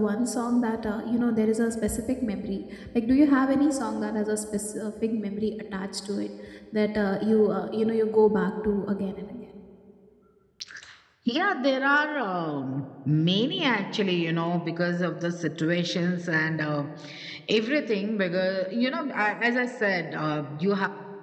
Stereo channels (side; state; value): both; identical; correlation 1.00